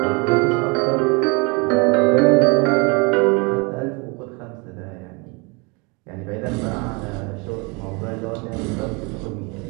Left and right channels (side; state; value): left; quieter; 29.9 dB